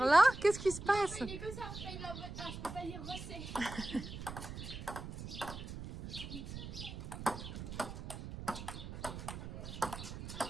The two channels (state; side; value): noise; right; rumble, 9 dB below the sound